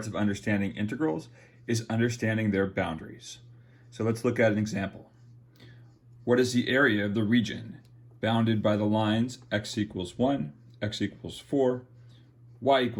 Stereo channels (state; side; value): identical; both; correlation 1.00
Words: of understanding integrals is understanding their boundaries. So let's look at an example. What is the area of the region bounded by the lines x equals 1, x equals 4, y